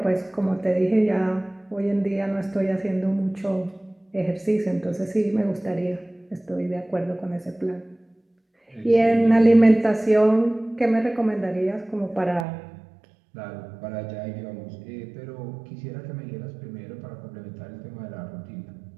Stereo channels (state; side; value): drops out; left; at 12.5 s